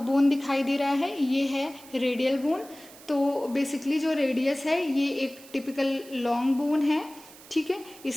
बोन दिखाई दे रहा है ये है रेडियल बोन। तो बेसिकली जो रेडियस है ये एक टिपिकल लॉन्ग बोन है। ठीक है,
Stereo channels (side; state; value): right; noise; hiss, 20 dB below the sound